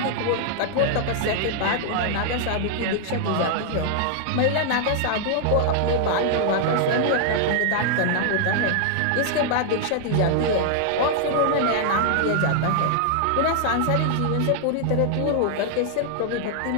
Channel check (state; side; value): different; both; correlation 0.00